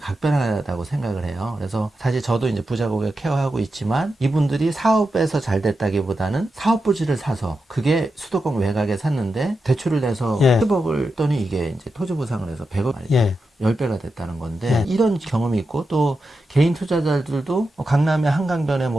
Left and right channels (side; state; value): both; normal; correlation 0.89